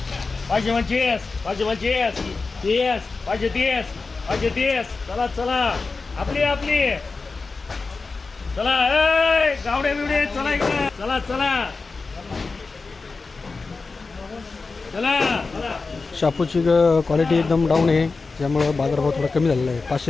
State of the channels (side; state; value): right; quieter; 4.1 dB